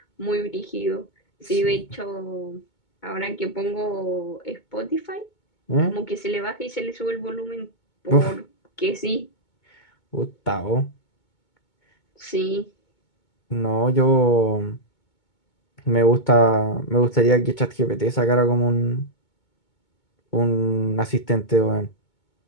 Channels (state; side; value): late; right; 2.2 ms